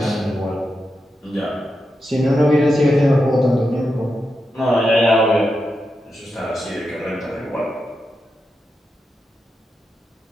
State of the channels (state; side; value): normal; both; correlation 0.88